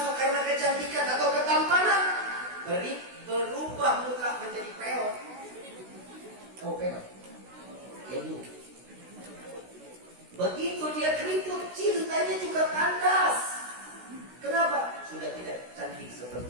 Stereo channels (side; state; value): left; late; 16 ms